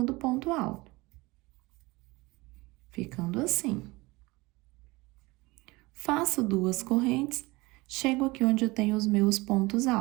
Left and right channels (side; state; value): left; quieter; 22.7 dB